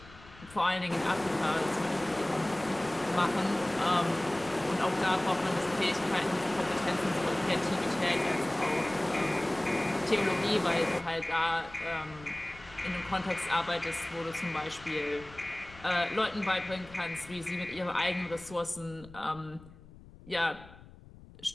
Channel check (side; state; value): left; noise; rumble, 20 dB below the sound